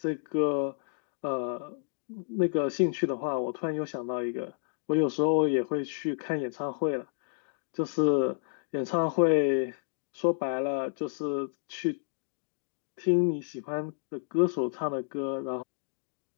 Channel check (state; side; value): silent; right; digital silence